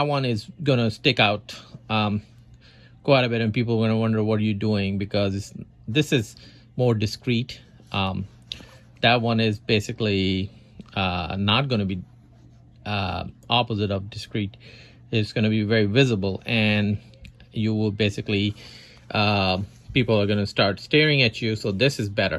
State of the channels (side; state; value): both; identical; correlation 1.00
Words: one is gonna stick out quite a bit, and people are gonna wonder what are you doing, because this is more discreet. That one is basically not gonna be opposite of discreet. It's gonna be very visible, and you will basically people are gonna start staring at you. So this is